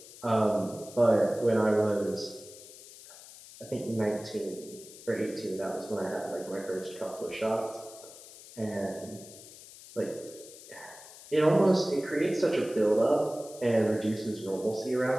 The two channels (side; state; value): left; noise; hiss, 18 dB below the sound